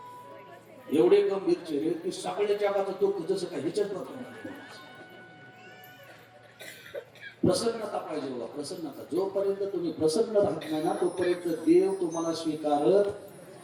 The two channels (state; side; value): identical; both; correlation 1.00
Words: एवढे गंभीर चेहरे की सगळ्या जगाचं दुःख जसं काय ह्याच्यात बघतो. प्रसन्नता पाहिजे बघा, प्रसन्नता. जोपर्यंत तुम्ही प्रसन्न राहत नाही ना तोपर्यंत देव तुम्हाला स्वीकारत.